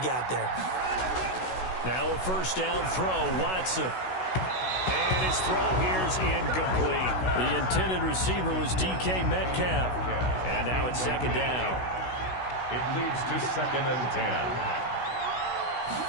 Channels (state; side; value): late; right; 16 ms